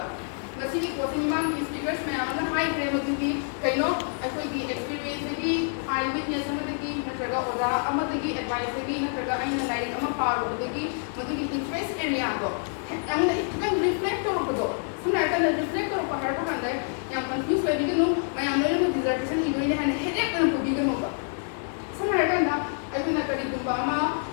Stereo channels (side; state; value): right; silent; 55 dB below the other